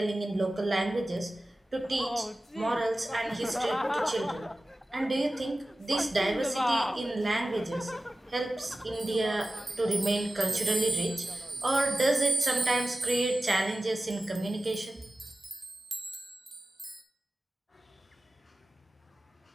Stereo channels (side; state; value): both; normal; correlation 0.96